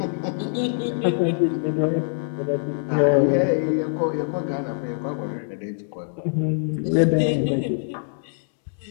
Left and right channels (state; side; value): silent; right; digital silence